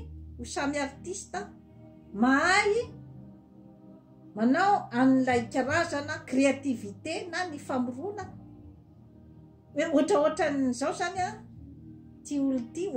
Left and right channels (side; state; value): both; identical; correlation 1.00